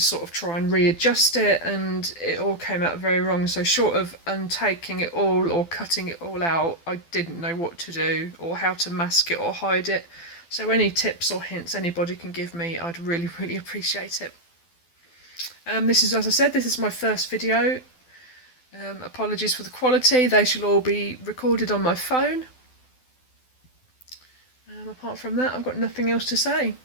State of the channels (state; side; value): late; right; 12 ms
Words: of try and readjust it, and it all came out very wrong. So short of untaking it all or cutting it all out, I didn't know what to do or how to mask it or hide it. So any tips or hints anybody can give me, I'd really appreciate it. This is, as I said, this is my first video. Apologies for the quality. They shall all be recorded on my phone. Apart from that, I've got nothing else to say,